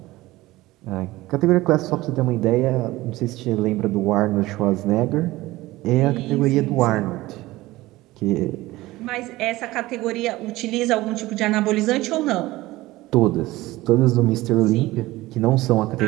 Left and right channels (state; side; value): quieter; left; 18.4 dB